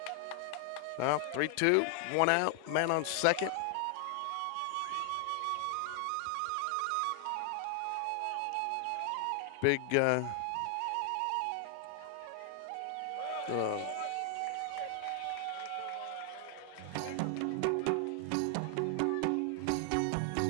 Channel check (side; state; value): both; different; correlation 0.00